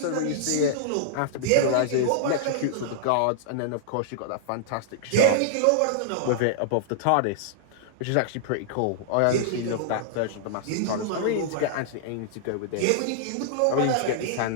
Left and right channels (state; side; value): different; both; correlation -0.01